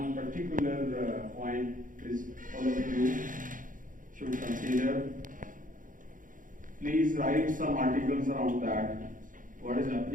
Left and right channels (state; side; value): late; left; 0.39 ms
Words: particular point which all of you should consider. Please write some articles around that. What is